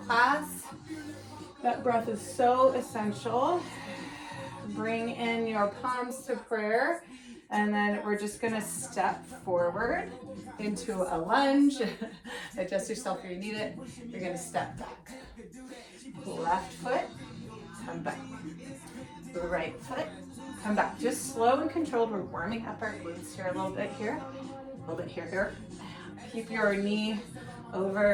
That breath is so essential. Bring in your palms to prayer, and then we're just gonna step forward into a lunge. Adjust yourself where you need it. You're gonna step back. Left foot, come back. Right foot, come back. Just slow and controlled. We're warming up our glutes here a little bit here. A little bit here. Keep your knee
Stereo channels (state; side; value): identical; both; correlation 1.00